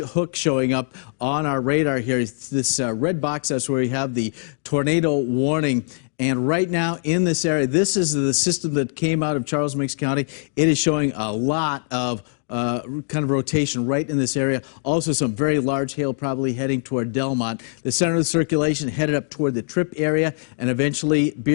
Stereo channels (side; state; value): right; silent; 64 dB below the other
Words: showing up on our radar here. It's this red box, that's where we have the tornado warning. And right now in this area, this is the system that came out of Charles Mix County. It is showing a lot of kind of rotation right in this area. Also some very large hail probably heading toward Delmont. The center of the circulation headed up toward the Trip area and eventually